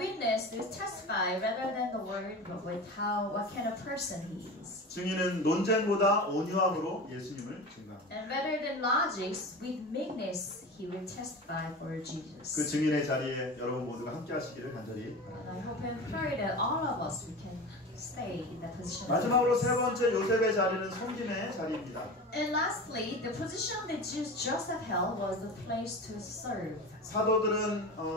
is testify rather than the word, but with what kind of person he is. 증인은 논쟁보다 온유함으로 예수님을 증거합니다. And rather than logics, with meekness he will testify for Jesus. 그 증인의 자리에 여러분 모두가 함께 하시기를 간절히 바랍니다. And I hope and pray that all of us we can stay in that position. 마지막으로 세 번째 요셉의 자리는 섬김의 자리입니다. And lastly, the position that Joseph held was the place to serve.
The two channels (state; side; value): normal; both; correlation 0.30